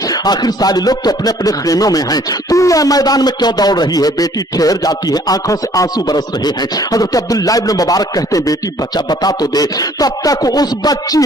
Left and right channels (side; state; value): both; normal; correlation 0.58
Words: आखिर सारे लोग तो अपने अपने खेमों में हैं, तू यह मैदान में क्यों दौड़ रही है। बेटी ठहर जाती है, आंखों से आंसू बरस रहे हैं। हजरत अब्दुल्लाह इब्न मुबारक कहते हैं बेटी बता तो दे। तब तक उस बच्ची